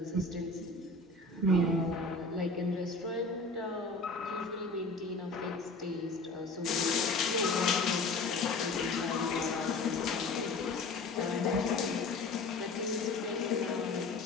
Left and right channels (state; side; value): quieter; right; 3.4 dB